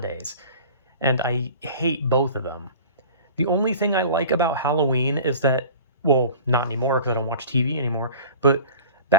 and I hate both of them. The only thing I like about Halloween is that, well, not anymore because I don't watch TV anymore, but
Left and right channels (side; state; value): both; inverted; correlation -0.40